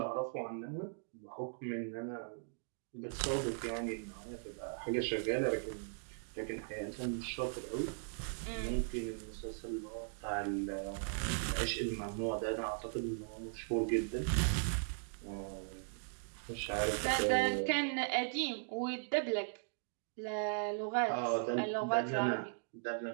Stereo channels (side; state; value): left; silent; digital silence